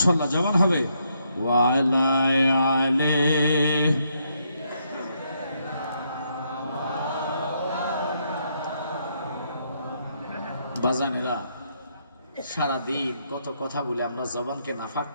জবান হবে ওয়ালা আলাইহি বাজানেরা সারাদিন কত কথা বলে আমরা জবানকে নাফাক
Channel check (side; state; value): both; inverted; correlation -0.76